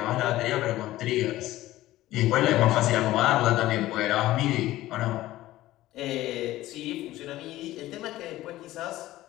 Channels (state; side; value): quieter; right; 15.8 dB